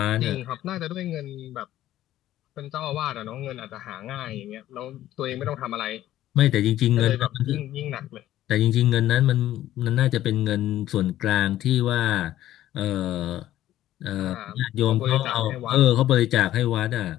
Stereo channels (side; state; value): right; quieter; 13.5 dB